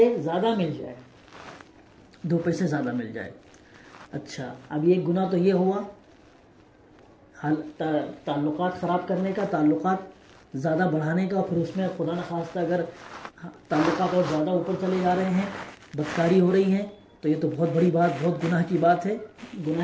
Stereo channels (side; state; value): both; identical; correlation 1.00